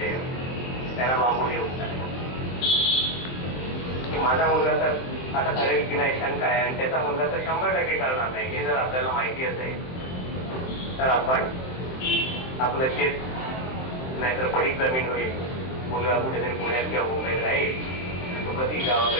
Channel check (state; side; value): late; right; 23 ms